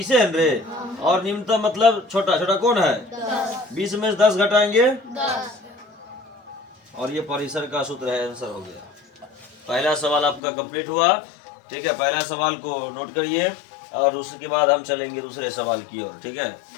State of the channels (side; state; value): right; drops out; at 10.4 s